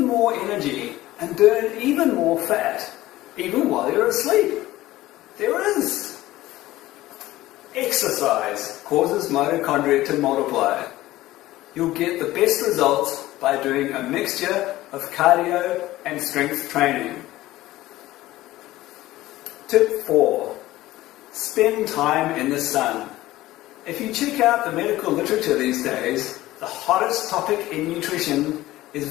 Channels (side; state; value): right; quieter; 16.5 dB